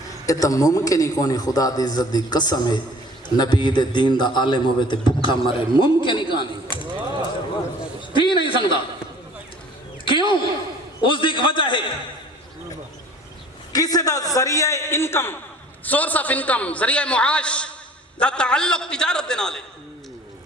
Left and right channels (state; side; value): normal; both; correlation 0.49